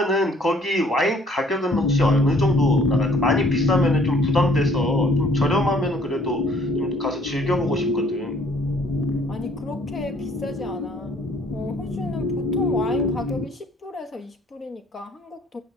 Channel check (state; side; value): normal; both; correlation 0.60